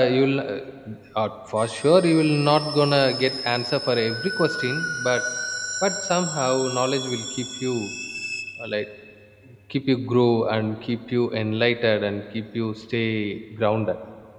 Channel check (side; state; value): both; identical; correlation 1.00